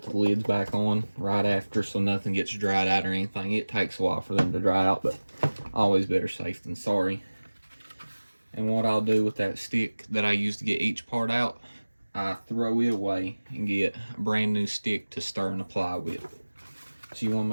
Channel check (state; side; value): inverted; both; correlation -1.00